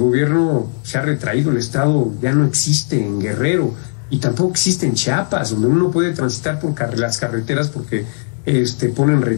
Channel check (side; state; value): right; silent; digital silence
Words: se ha retraído, el Estado ya no existe en Guerrero y tampoco existe en Chiapas, donde uno puede transitar por las carreteras porque ponen